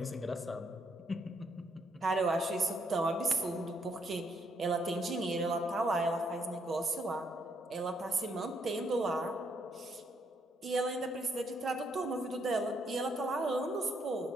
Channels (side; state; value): both; normal; correlation 0.73